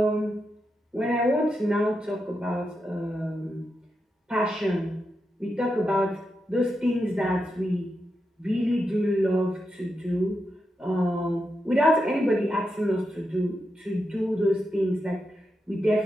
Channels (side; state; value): both; normal; correlation 0.86